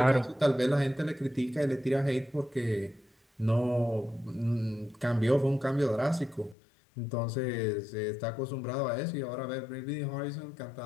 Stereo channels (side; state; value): right; drops out; at 6.6 s